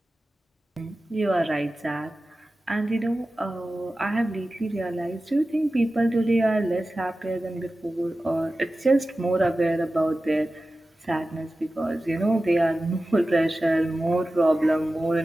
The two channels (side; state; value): both; normal; correlation 0.95